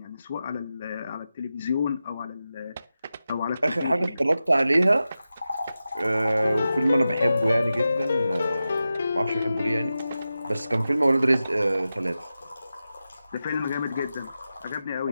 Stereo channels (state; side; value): inverted; both; correlation -0.92